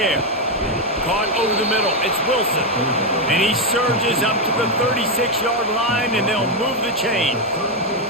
Caught over the middle. It's Wilson. And he surges up to the 36-yard line, and they'll move the chain.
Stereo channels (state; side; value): normal; both; correlation 0.05